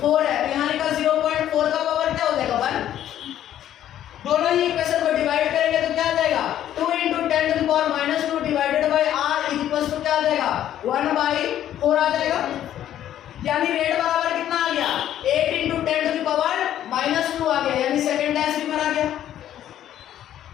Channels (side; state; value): right; quieter; 11.5 dB